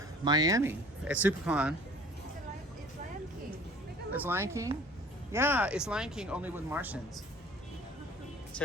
Miami at SuperCon. It's Lion King. It's Lion King? Yeah, it's Lion King only with Martians.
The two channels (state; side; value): normal; both; correlation 0.49